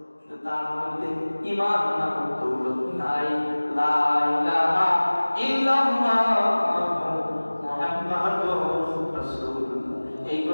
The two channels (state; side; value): inverted; both; correlation -1.00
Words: তার মধ্যে ঈমান নামক দৌলত নাই। লা ইলাহা ইল্লাল্লাহ মুহাম্মাদুর রাসূলুল্লাহ, এই